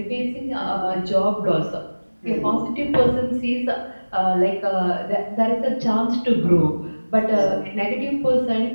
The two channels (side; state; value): both; inverted; correlation -1.00